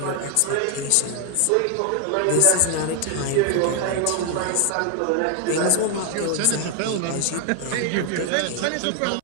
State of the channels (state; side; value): different; both; correlation 0.00